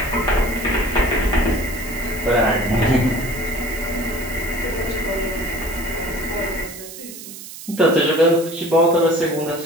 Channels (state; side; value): noise; right; hiss, 13 dB below the sound